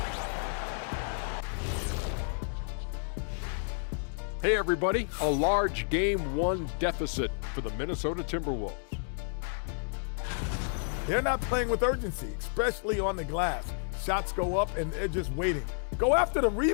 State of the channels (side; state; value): right; silent; digital silence